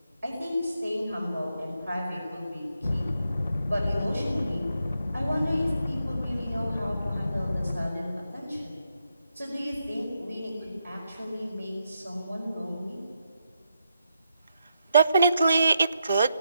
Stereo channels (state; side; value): inverted; both; correlation -0.82